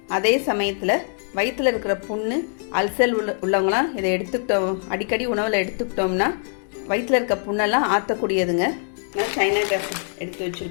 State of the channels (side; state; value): right; silent; 63 dB below the other